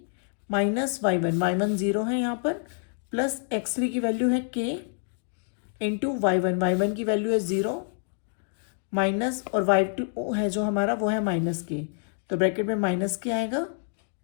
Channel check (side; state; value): right; silent; 60 dB below the other